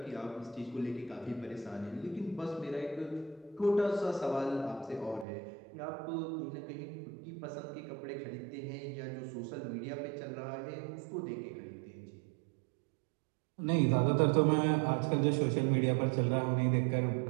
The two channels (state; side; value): drops out; left; at 5.2 s